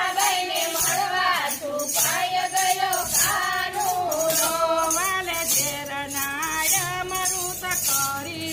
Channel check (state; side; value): identical; both; correlation 1.00